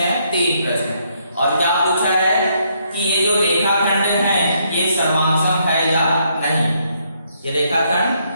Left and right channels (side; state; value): both; inverted; correlation -0.73